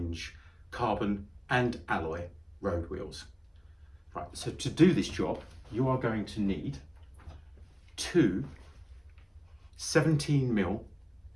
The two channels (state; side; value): identical; both; correlation 1.00